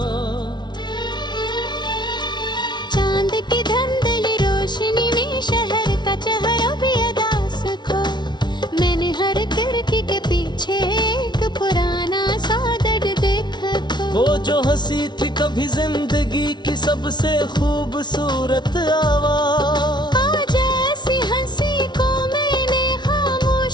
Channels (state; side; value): late; right; 0.21 ms